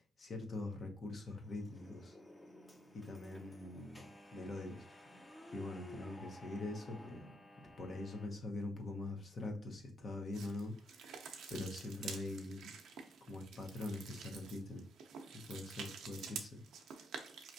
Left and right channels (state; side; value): normal; both; correlation 0.75